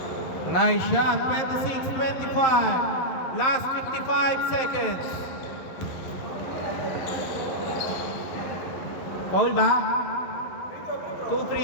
Nice shot. 26-25. Last 55 seconds. Foul ba? 2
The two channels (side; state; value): right; late; 11 ms